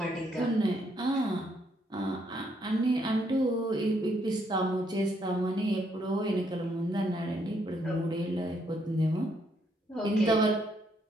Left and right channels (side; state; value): both; normal; correlation 0.73